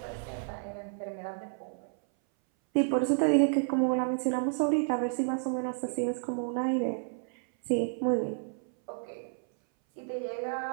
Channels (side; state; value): left; silent; 57 dB below the other